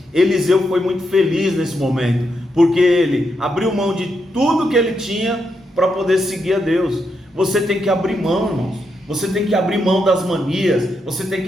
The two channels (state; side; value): normal; both; correlation 0.82